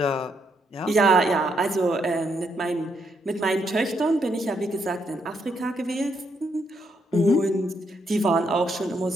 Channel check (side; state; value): both; normal; correlation 0.76